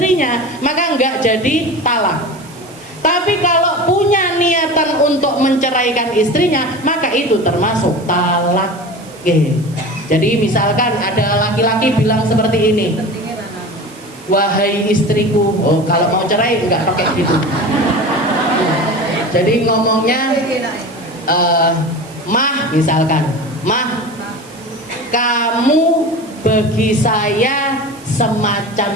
maka nggak jadi talak. Tapi kalau punya niatan untuk menceraikan istrinya, maka itu termasuk talak. Jadi misalkan ada laki-laki bilang seperti ini, wahai istriku, oh kalau mau cerai nggak pakai gitu. Jadi ngomongnya Mah, misalkan, Mah, kamu bagi saya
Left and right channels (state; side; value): noise; right; hiss, 23 dB below the sound